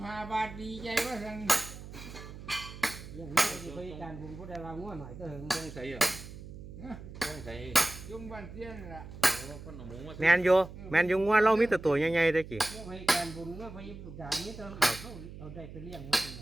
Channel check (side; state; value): right; noise; hum, 13 dB below the sound